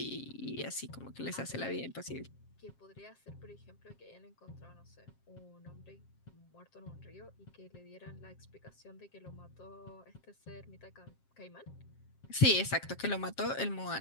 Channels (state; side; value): late; right; 7.5 ms